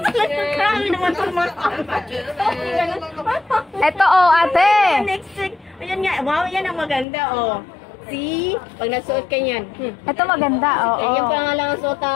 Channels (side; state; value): right; drops out; at 7.1 s